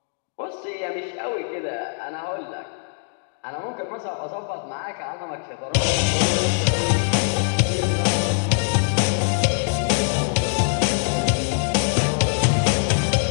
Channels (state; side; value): silent; right; 64 dB below the other